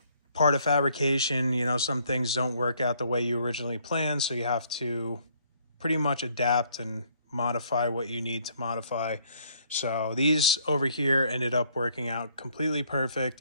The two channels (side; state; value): both; inverted; correlation -0.65